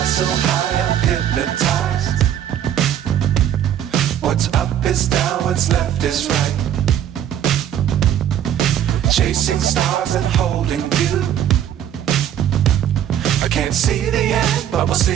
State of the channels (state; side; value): quieter; left; 10.3 dB